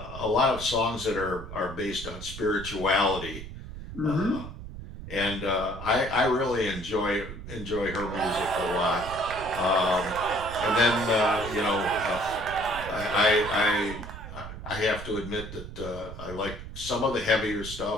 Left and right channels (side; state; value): right; noise; rumble, 11 dB below the sound